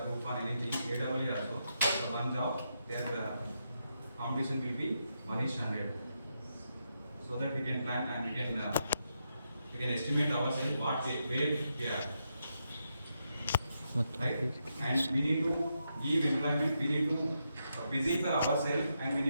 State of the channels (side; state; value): both; inverted; correlation -0.83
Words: group 1 anything. AWE also. So one job their competition will be 1:100. So that we can plan and we can estimate ourselves where we are. Right? And we need to give employment. We need to busy for ourselves, and we